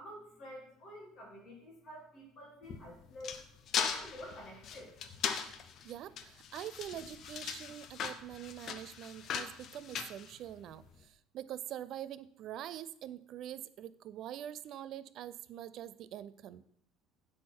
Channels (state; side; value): normal; both; correlation 0.49